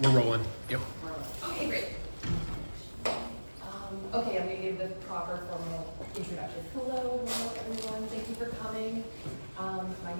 We're rolling. Yep. Okay, great. Okay, I'm going to give the proper formal introduction. Hello, everyone. Thank you for coming. My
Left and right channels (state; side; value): inverted; both; correlation -1.00